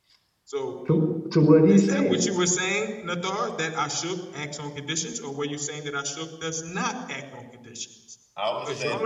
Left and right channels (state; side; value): identical; both; correlation 1.00